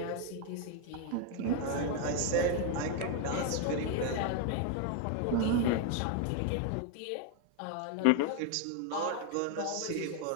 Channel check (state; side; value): different; both; correlation 0.01